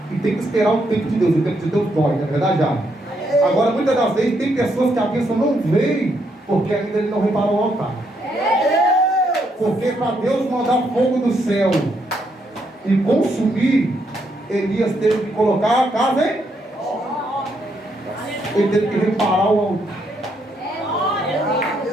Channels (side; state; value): both; normal; correlation 0.76